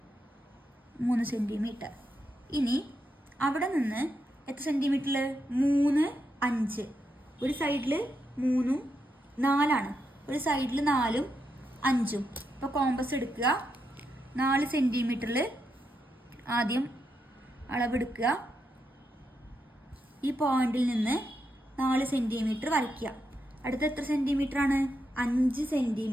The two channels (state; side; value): normal; both; correlation 0.83